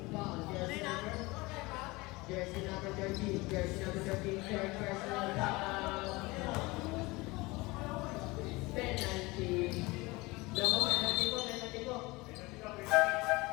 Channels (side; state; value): right; quieter; 22.9 dB